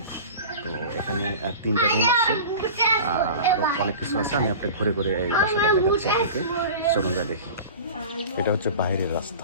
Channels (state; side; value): inverted; both; correlation -0.36